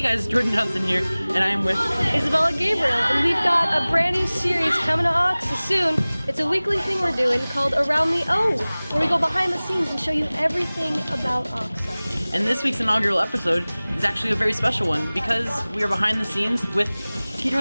guys, Jordan Johnson here, and I am with Isabella Gabriel, and we've got a brand new series coming to Oxa soon. It's a weekly thing we're doing called Around the O, where we go behind the scenes and show you everything about Oxa. And this week's inaugural episode is actually a very special one because we are behind the scenes with Peter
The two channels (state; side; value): inverted; both; correlation -0.99